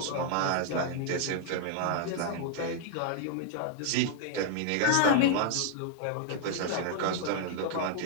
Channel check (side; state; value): both; different; correlation -0.01